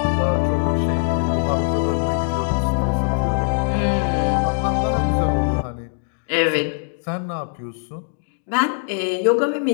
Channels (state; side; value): silent; right; digital silence